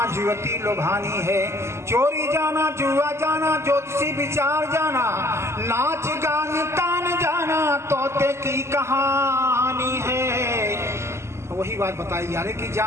जुवती लोभानी है चोरी जाना जुआ जाना ज्योतिषी विचार जाना नाच गान तान जाना तोते की कहानी है। वही बात बताई यार कि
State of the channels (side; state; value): left; late; 0.13 ms